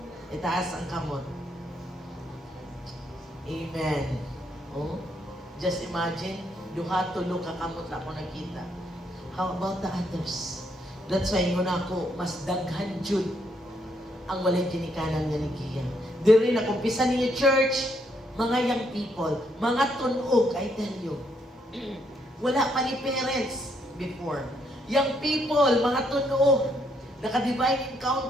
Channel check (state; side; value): normal; both; correlation 0.73